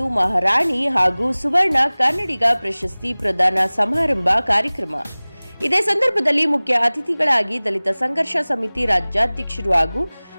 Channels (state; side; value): inverted; both; correlation -1.00